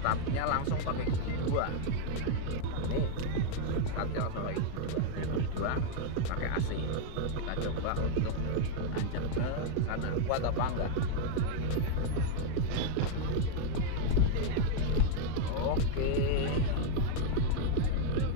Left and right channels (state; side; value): different; both; correlation 0.00